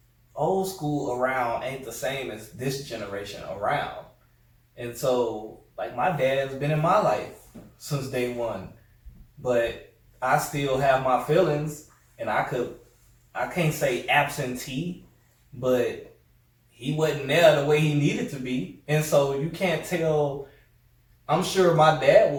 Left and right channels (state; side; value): identical; both; correlation 1.00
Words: old school around ain't the same as this generation around. And so, like, my dad's been in my life since day one, but I still have my feelings, and I can't say absentee, but he wasn't there the way he needed to be. And so you can't tell. I'm sure my dad